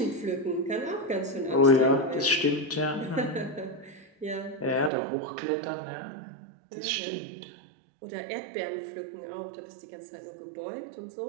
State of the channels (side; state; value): left; drops out; at 4.9 s